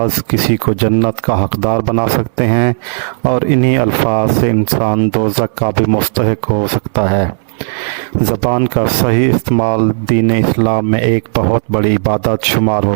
کسی کو جنت کا حقدار بنا سکتے ہیں اور انہی الفاظ سے انسان دوزخ کا بھی مستحق ہو سکتا ہے۔ زبان کا صحیح استعمال دین اسلام میں ایک بہت بڑی عبادت شمار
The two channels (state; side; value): silent; left; digital silence